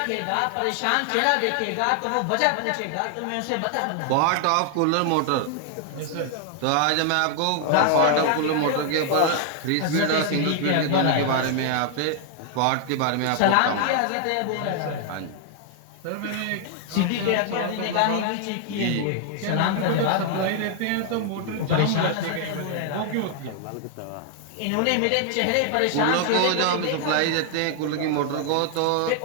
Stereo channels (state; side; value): different; both; correlation 0.00